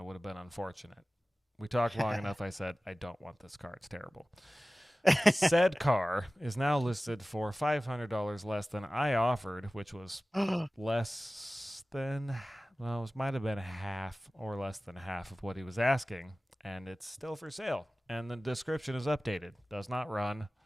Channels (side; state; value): both; normal; correlation 0.97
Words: would have been unfortunate. We talked long enough. I said, I don't want this car. It's terrible. Said car is now listed for $500 less than I offered, which was less than, well, it might have been half or less than half of what he was asking. And it's still for sale. And the description is updated. Does not run.